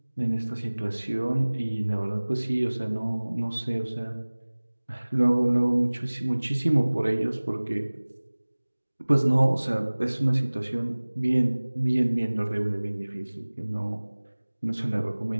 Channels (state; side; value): inverted; both; correlation -1.00